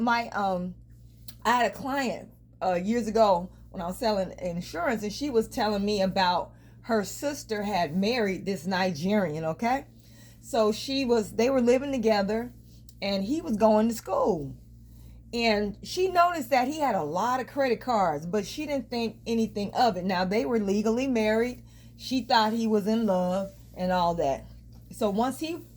had a client years ago when I was selling insurance, and she was telling me about her sister had married this Nigerian, okay? So they were living together, and he was going to school. And she noticed that he had a lot of credit cards, but she didn't think anything of it. Now, they were legally married. She thought he was in love and all that. So once he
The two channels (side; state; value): both; identical; correlation 1.00